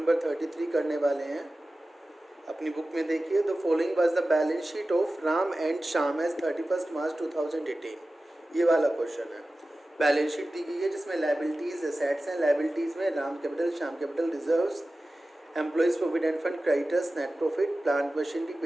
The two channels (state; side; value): normal; both; correlation 0.95